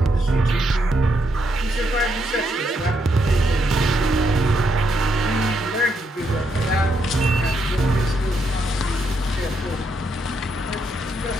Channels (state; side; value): normal; both; correlation 0.78